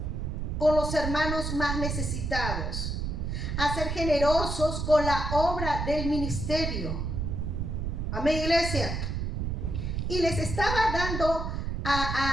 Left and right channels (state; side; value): noise; right; rumble, 2 dB below the sound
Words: con los hermanos más necesitados, a ser generosos con la obra del ministerio. Amén, iglesia. Y les estaba dando